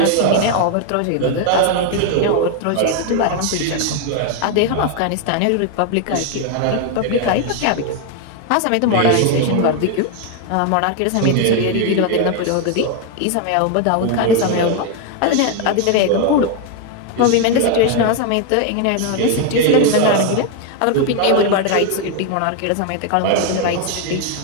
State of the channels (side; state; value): both; different; correlation 0.01